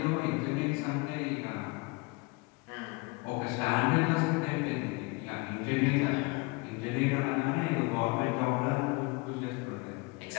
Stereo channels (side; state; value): right; quieter; 27.1 dB